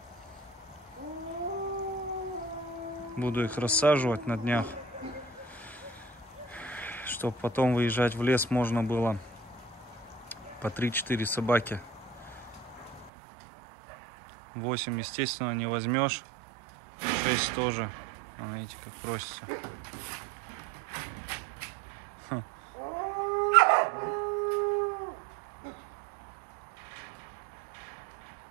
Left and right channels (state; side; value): drops out; left; at 13.1 s